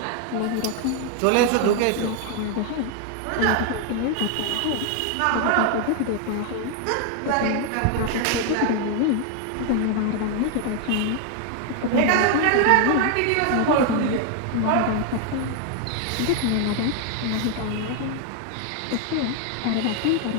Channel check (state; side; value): different; both; correlation 0.00